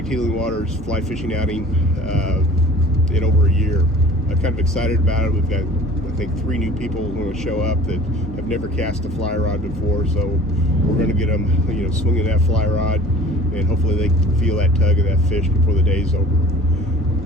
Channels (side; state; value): both; normal; correlation 0.46